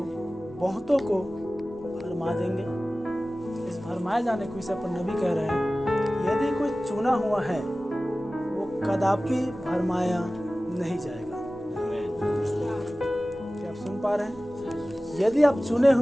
बहुतों को भरमा देंगे। इस भरमाए जाने को विषय पर नबी कह रहे हैं, यदि कोई चुना हुआ है वो कदापि भरमाया नहीं जाएगा। क्या आप सुन पा रहे हैं? यदि आप चुने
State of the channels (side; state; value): both; normal; correlation 0.97